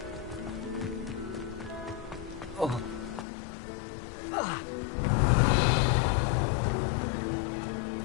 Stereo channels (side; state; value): right; drops out; at 3.2 s